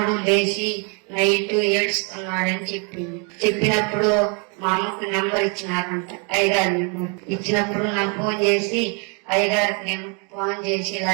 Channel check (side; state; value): left; quieter; 35.9 dB